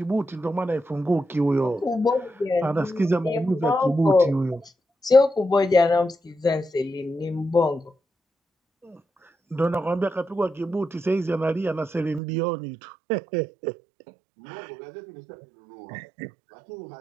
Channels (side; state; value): left; drops out; at 12.2 s